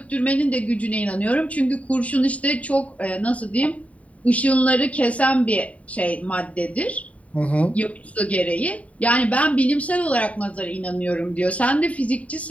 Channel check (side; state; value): right; late; 0.067 ms